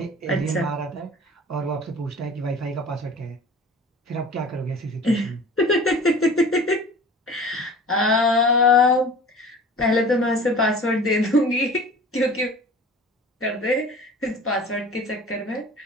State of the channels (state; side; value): normal; both; correlation 0.42